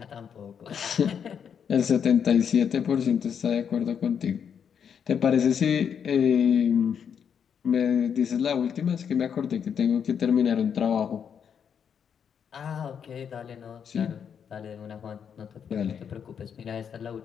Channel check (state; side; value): quieter; right; 7.6 dB